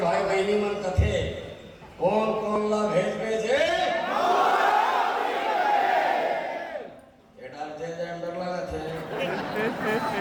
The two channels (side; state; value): both; identical; correlation 1.00